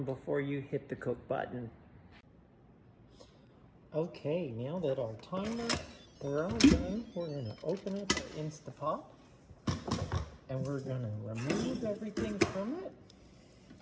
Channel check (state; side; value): identical; both; correlation 1.00